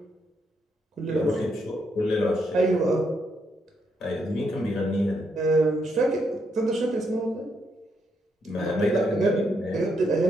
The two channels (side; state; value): both; normal; correlation 0.77